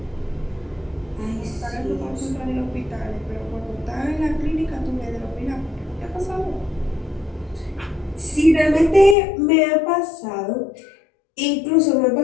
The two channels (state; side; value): drops out; right; at 9.2 s